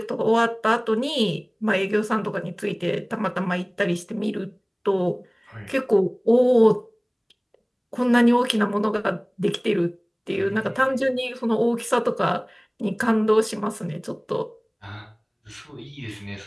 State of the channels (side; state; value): both; identical; correlation 1.00